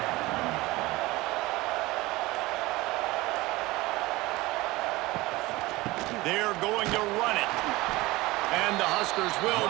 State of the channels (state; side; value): quieter; left; 20.2 dB